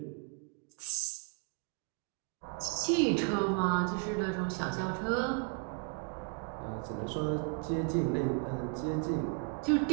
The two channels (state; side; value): quieter; left; 38.9 dB